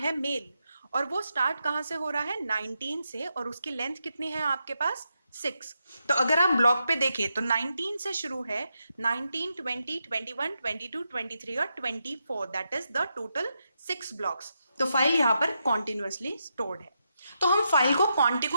मेल और वो स्टार्ट कहां से हो रहा है, 19 से, और उसकी लेंथ कितनी है आपके पास, 6. तो अगर आप ब्लॉक पे देखें तो 19 से शुरू है, 19, 20, 21, 22, 23 और 24, that is the total 6 blocks. तो फाइल यहाँ पर कॉन्टिन्यूअसली स्टोर्ड है. तो हम फाइल को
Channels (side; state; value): both; inverted; correlation -0.84